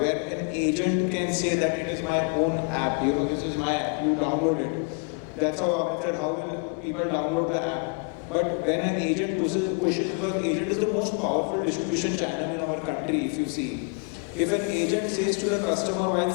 an agent can say that it is my own app, this is my app, you download it. That's how Amit said, how will people download the app? But when an agent pushes, because agent is the most powerful distribution channel in our country, if you see. If an agent says to the customer while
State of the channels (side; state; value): right; quieter; 38.3 dB